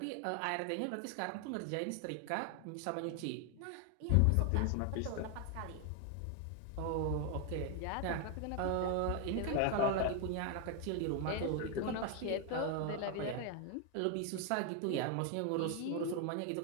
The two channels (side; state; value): both; different; correlation 0.00